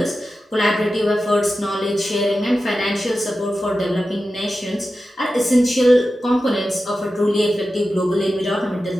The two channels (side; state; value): both; normal; correlation 0.93